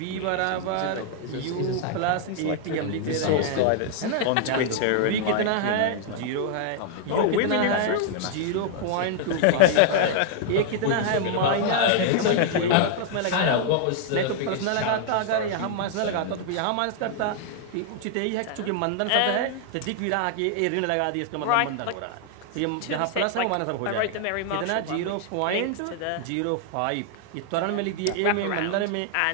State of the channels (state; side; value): different; both; correlation -0.01